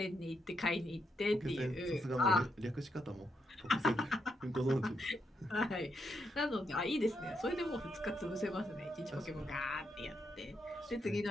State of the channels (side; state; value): both; normal; correlation 0.80